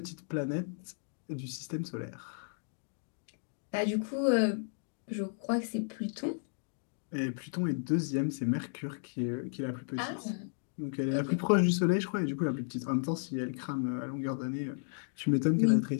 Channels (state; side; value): silent; right; digital silence